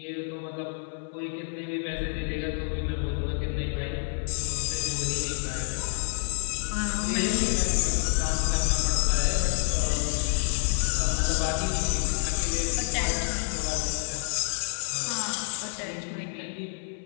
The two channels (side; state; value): right; silent; 56 dB below the other